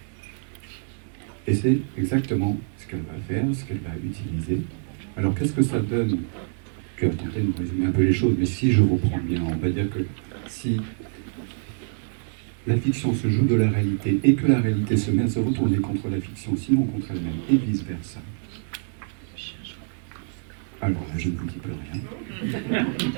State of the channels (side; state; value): left; silent; digital silence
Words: Et c'est exactement ce qu'elle va faire, ce qu'elle va utiliser. Alors qu'est-ce que ça donne? Tu as tenté de nous résumer un peu les choses, mais si je reprends bien, on va dire que si la fiction se joue de la réalité et que la réalité se met à se retourner contre la fiction, sinon contre elle-même, et vice-versa. Alors là, je ne vous dis plus rien.